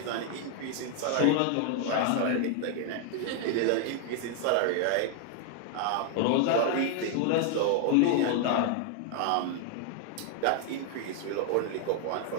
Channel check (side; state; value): both; different; correlation 0.00